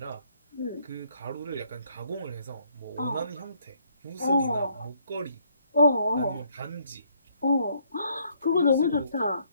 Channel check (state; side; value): inverted; both; correlation -0.68